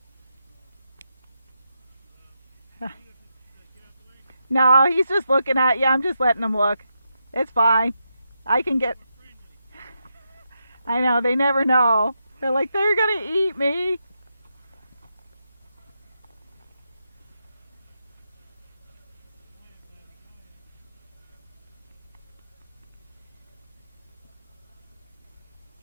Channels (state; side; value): inverted; both; correlation -0.85